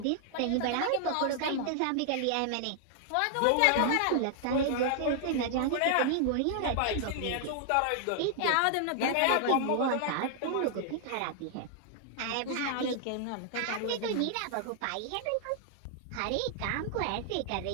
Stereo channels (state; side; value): different; both; correlation -0.01